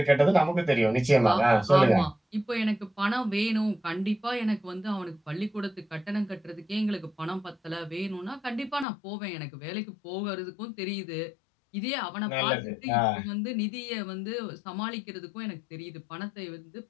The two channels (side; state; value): right; drops out; at 8.8 s